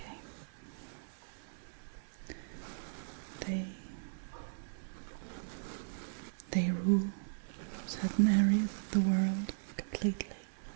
They rule certain areas of the world completely.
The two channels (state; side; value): silent; left; digital silence